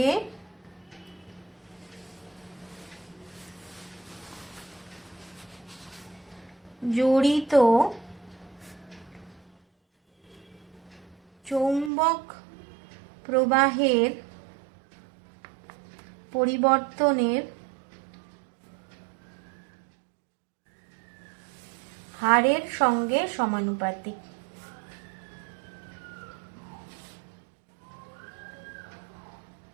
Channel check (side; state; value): left; drops out; at 11.9 s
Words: জড়িত চৌম্বক প্রবাহের পরিবর্তনের আর এর সঙ্গে সমানুপাতিক।